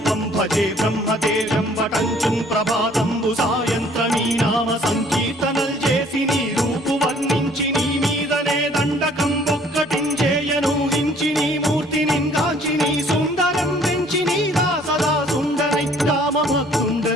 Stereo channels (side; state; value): both; normal; correlation 0.58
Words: భజే బ్రహ్మదేవం వటంచుం ప్రభాతంబు సాయంత్రమీ నామ సంకీర్తనల్ చేసి నీ రూపు వర్ణించి నీ మీదనే దండకం ఒక్కటించేయనూహించి నీ మూర్తిని కాంచి నీ సుందరం పెంచి నీ దాసదా సుందరై